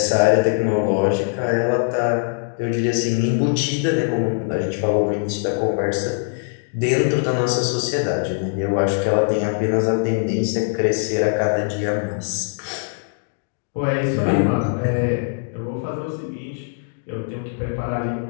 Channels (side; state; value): right; silent; digital silence